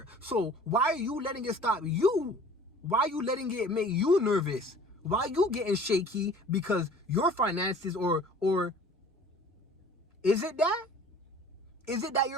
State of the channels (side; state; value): both; normal; correlation 0.48